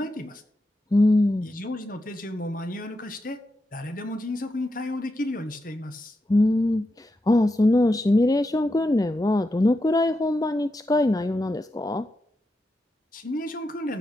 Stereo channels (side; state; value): both; normal; correlation 0.87